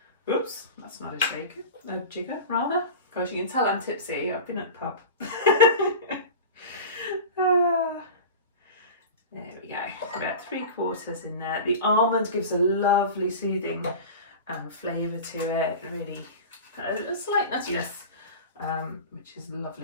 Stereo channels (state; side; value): inverted; both; correlation -0.32